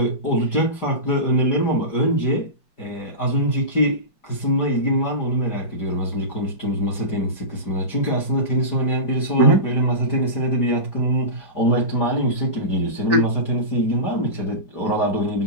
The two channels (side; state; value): right; late; 5.0 ms